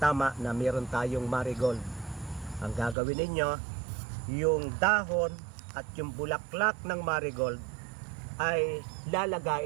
na meron tayong marigold. Ang gagawin ninyo, yung dahon at yung bulaklak ng marigold ay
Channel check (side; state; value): left; drops out; at 3.0 s